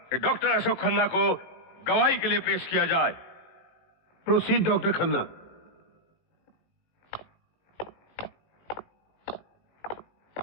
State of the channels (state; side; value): late; right; 18 ms